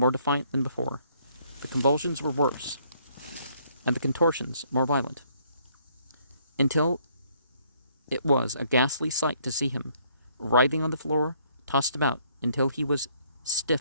defiant than before. The convulsions were worse, and the contortions more violent. until it was a ghastly sight to see him, writhing on the floor, tossed about until he was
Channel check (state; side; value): inverted; both; correlation -0.66